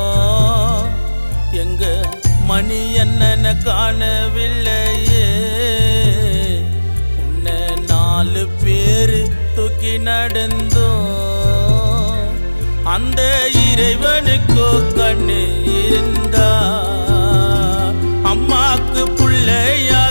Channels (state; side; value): inverted; both; correlation -1.00